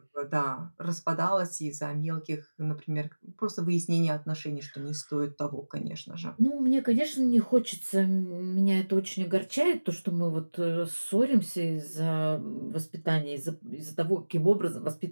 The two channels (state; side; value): inverted; both; correlation -1.00